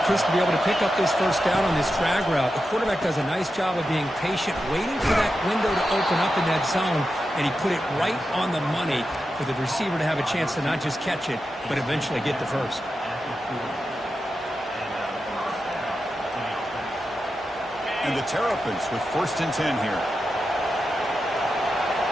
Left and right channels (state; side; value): normal; both; correlation 0.90